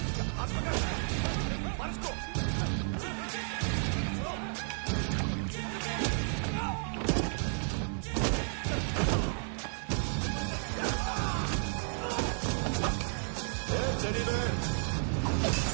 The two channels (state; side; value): silent; left; 56 dB below the other